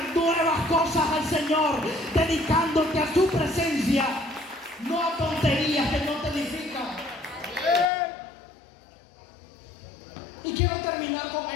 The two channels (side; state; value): right; drops out; at 7.9 s